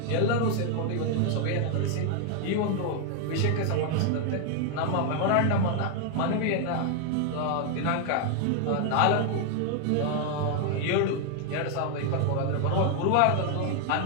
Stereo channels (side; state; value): both; different; correlation 0.00